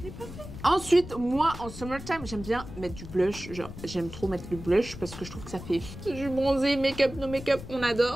l'ai pas fait. Ensuite, moi, en summertime, j'aime bien mettre du blush. Genre, j'aime trop mettre le blush parce que je trouve que ça fait... Je suis bronzée, make-up, no make-up, on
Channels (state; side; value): noise; left; rumble, 12 dB below the sound